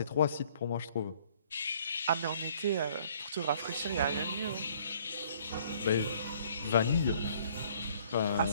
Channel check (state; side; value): inverted; both; correlation -0.59